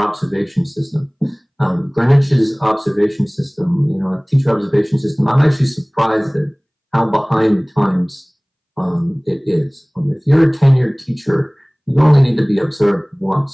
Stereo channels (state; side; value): identical; both; correlation 1.00